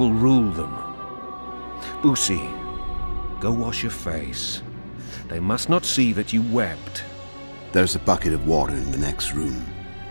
rule them. Busi, go wash your face. They must not see that you wept. There's a bucket of water in the next room.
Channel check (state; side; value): inverted; both; correlation -1.00